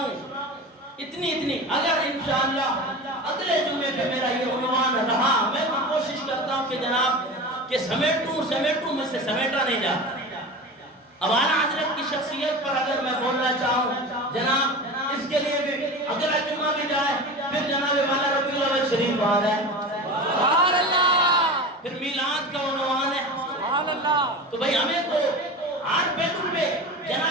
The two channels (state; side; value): normal; both; correlation 0.30